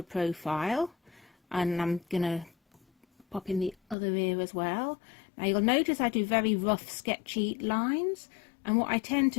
profile, and I'm gonna pop in the other ear as well. Now you'll notice I do very rough sketchy lines, and what I tend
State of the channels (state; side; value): drops out; right; at 4.0 s